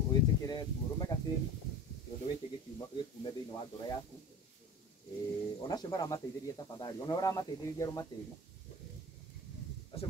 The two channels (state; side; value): normal; both; correlation 0.36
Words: uitekere tu rume gatiri undu wiki gikume thiini wa ngoro yaku. Onacio maramateithĩrĩria tafadhali, ona ũramateithĩrĩria rumatĩri acio